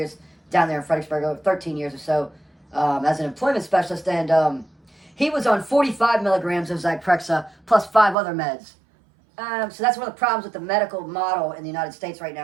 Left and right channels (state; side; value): drops out; left; at 8.2 s